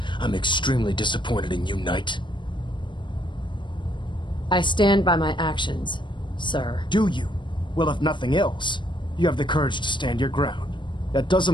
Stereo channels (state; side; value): late; right; 0.23 ms